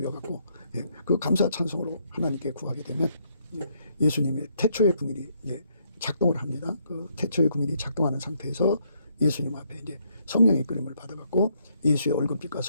그 감사 찬송으로 하나님께 구하게 되면 예수님의 태초의 궁일이 작동을 합니다. 그 태초의 궁일이 작동하는 상태에서 예수님 앞에 이제 성령의 이끌림을 받아갖고 예수의 얼굴빛과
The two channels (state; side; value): inverted; both; correlation -0.72